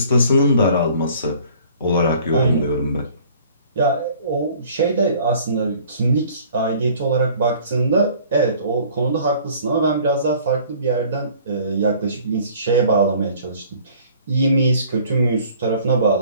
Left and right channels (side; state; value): both; inverted; correlation -0.52